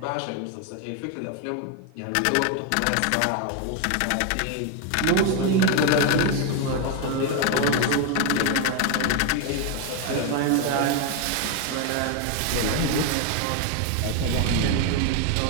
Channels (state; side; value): different; both; correlation 0.01